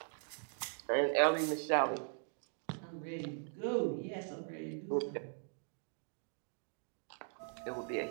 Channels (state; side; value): silent; left; 51 dB below the other